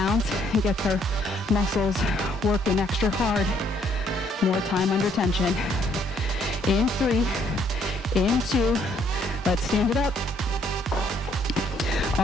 and gets our muscles working extra hard. More time under tension. In 3, in 2, let's stand it up.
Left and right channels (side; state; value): both; normal; correlation 0.67